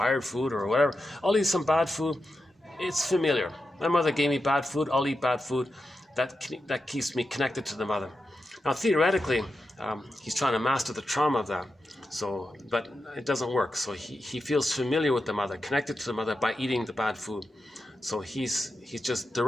food, or whatever. I'll eat some bad food. It's familiar. My mother gave me bad food, I'll eat bad food. That keeps me connected to the mother. Now, theoretically, he's trying to master the trauma of that. So, but it doesn't work. So he feels familiar with the mother, connected to the mother by eating the bad food. So he's just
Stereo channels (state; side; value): normal; both; correlation 0.89